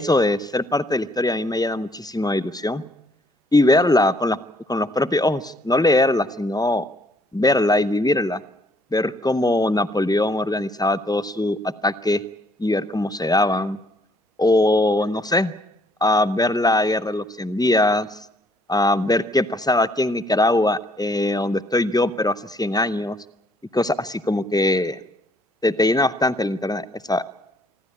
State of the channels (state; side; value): normal; both; correlation 0.63